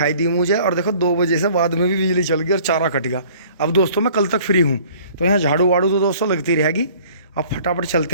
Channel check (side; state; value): both; inverted; correlation -0.52